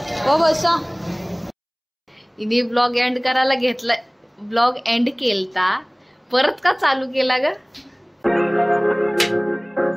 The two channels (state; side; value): identical; both; correlation 1.00